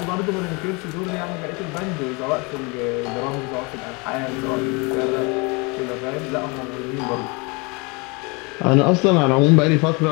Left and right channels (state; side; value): quieter; right; 29.0 dB